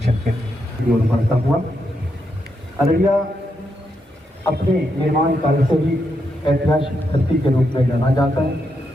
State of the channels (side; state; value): both; normal; correlation 0.82